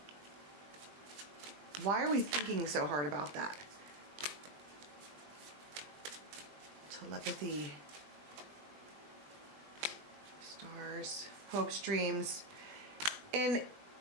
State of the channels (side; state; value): left; late; 20 ms